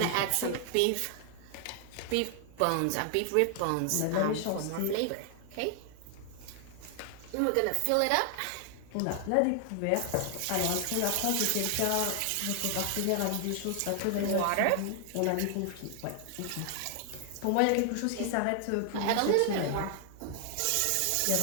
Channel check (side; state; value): both; different; correlation 0.00